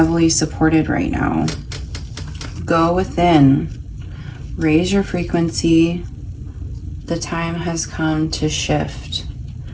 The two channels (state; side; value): identical; both; correlation 1.00